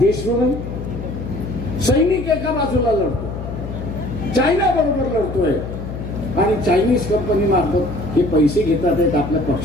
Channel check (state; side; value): noise; left; hum, 8 dB below the sound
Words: नाही. सैनिक एका बाजूला लढतो, चायना बरोबर लढतोय आणि चायनीज कंपनी मार्फत हे पैसे घेतात आहेत आपल्या